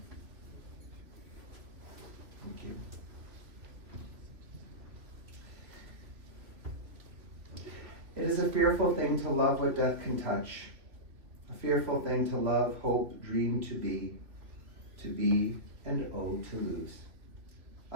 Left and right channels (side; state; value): left; late; 2.8 ms